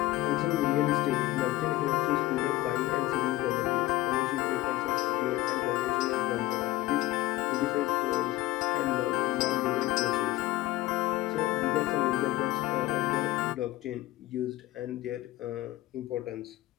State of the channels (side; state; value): right; quieter; 16.7 dB